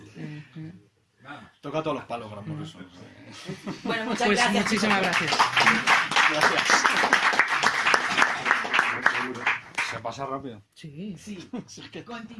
Toca todos los palos, Grant Morrison. Bueno, muchas Pues gracias. muchísimas gracias. Gracias. Se pasa rápido. Sí. Sí.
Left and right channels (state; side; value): identical; both; correlation 1.00